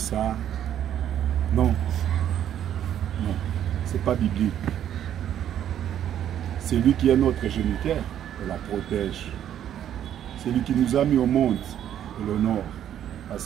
Non. Non. Ce n'est pas biblique. C'est lui qui est notre géniteur, on la protège. C'est lui qui nous a mis au monde, et l'honneur,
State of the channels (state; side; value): quieter; left; 10.4 dB